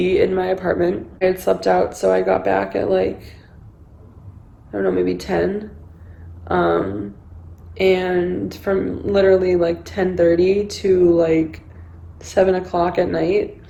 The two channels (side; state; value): both; identical; correlation 1.00